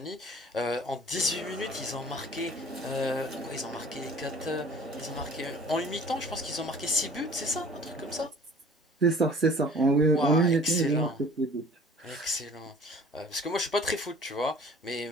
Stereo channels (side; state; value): both; normal; correlation 0.49